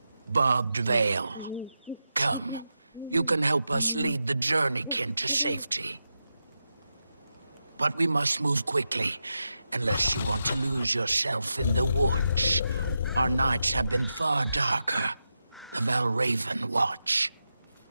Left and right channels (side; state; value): both; inverted; correlation -0.89